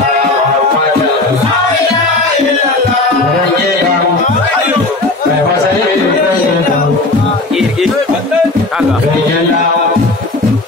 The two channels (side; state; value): right; quieter; 3.1 dB